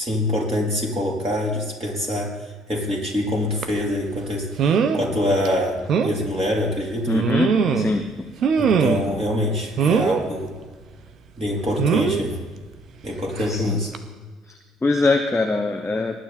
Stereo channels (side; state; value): both; normal; correlation 0.62